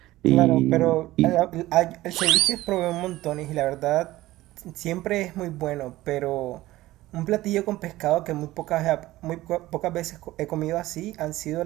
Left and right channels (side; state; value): left; quieter; 16.8 dB